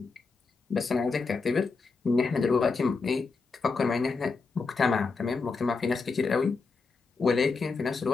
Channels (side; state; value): right; quieter; 4.4 dB